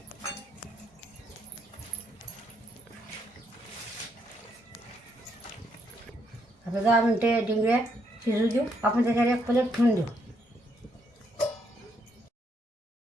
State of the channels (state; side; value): normal; both; correlation 0.74